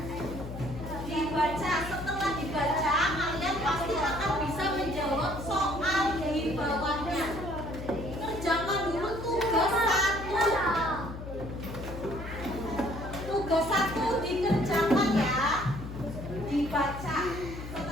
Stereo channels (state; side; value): noise; left; hum, 9 dB below the sound